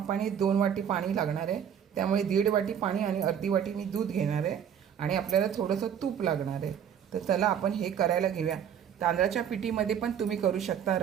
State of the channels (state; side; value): quieter; left; 8.7 dB